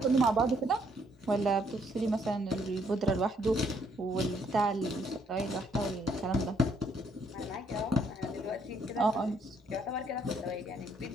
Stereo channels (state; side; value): normal; both; correlation 0.69